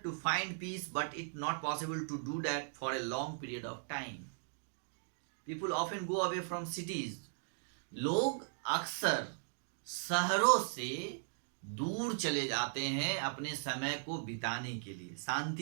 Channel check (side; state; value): left; silent; digital silence